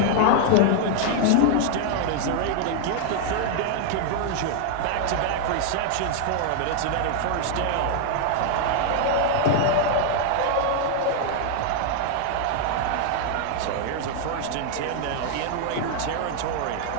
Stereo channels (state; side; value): different; both; correlation 0.00